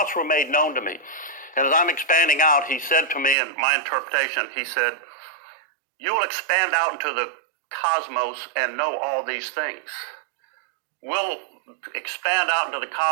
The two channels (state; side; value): drops out; left; at 3.4 s